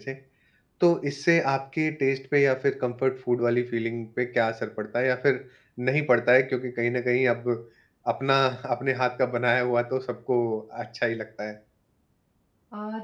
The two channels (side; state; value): both; identical; correlation 1.00